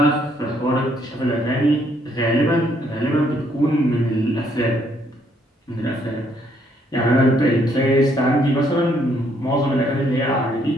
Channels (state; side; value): normal; both; correlation 0.69